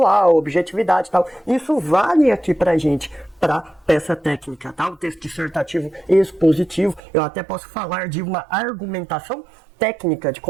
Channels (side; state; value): left; drops out; at 7.0 s